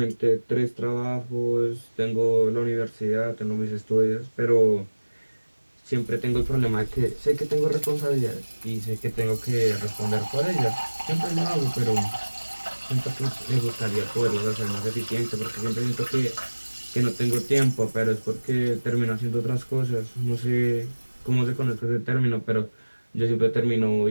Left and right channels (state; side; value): inverted; both; correlation -1.00